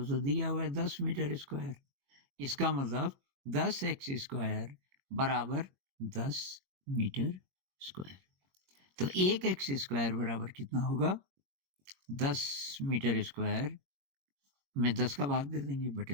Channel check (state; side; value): late; left; 21 ms